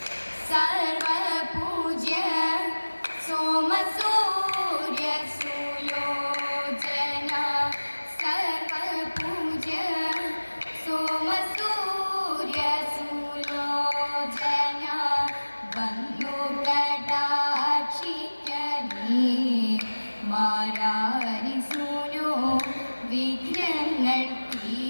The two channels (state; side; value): inverted; both; correlation -1.00